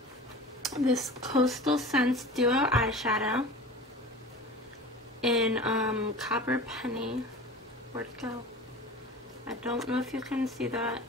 this Coastal Scents Duo eyeshadow in Copper Penny. Where'd it go? I don't know if you can see that.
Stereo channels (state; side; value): normal; both; correlation 0.37